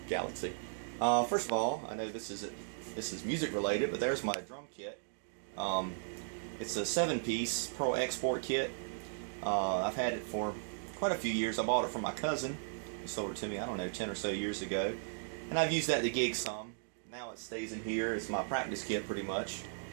Galaxy. First of all, I know this is music related, but there's my drum kit. It's a 7-piece Pro Export kit. I've had it for quite a few years. I bought it from my cousin. He sold it to me, I don't know, 10 or so years ago. And I've used that to gig some. Now it stays in here. It's my practice kit pretty much.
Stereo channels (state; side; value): silent; left; digital silence